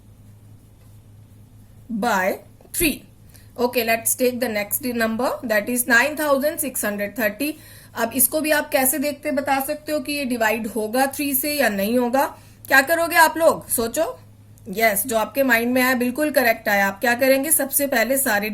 by 3. Okay, let's take the next number, that is 9630। अब इसको भी आप कैसे देखते बता सकते हो कि ये डिवाइड होगा 3 से या नहीं होगा? क्या करोगे आप लोग? सोचो। यस, जो आपके माइंड में आया बिल्कुल करेक्ट आया। आप क्या करेंगे? सबसे पहले सारे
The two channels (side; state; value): both; identical; correlation 1.00